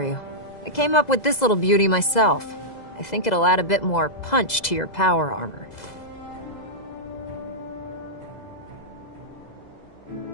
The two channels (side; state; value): right; late; 2.0 ms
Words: you. I came up with this little beauty myself. I think it'll add a bit more punch to your power armor.